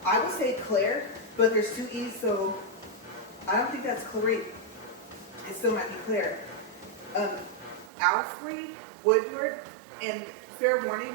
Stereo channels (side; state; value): left; drops out; at 7.9 s